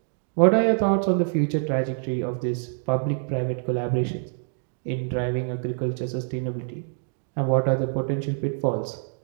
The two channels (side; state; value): left; silent; digital silence